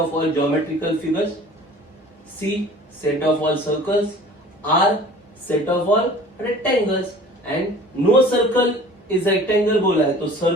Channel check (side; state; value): both; normal; correlation 0.46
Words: all geometrical figures, C, set of all circles, R, set of all rectangles, and no circle is rectangle बोला है तो